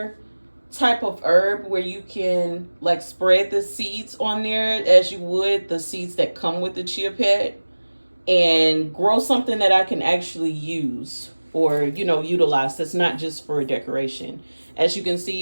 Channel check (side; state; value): both; inverted; correlation -1.00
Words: type of herb where you can like spread the seeds on there as you would the seeds that come with the chia pet, and grow something that I can actually use or, you know, utilize. That's not just for decoration. As you can